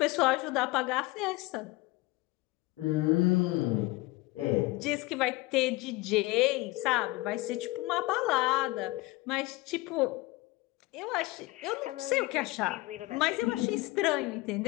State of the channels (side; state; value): right; quieter; 21.1 dB